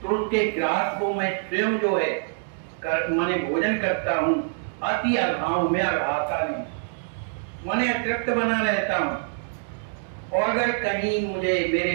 तो उसके ग्रास को मैं स्वयं जो है माने भोजन करता हूँ। अति अघाव में अघाता नहीं, माने अतृप्त बना रहता हूँ। और अगर कहीं मुझे मेरे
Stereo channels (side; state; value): left; silent; digital silence